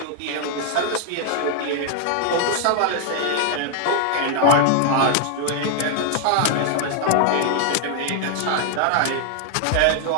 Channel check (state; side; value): different; both; correlation 0.00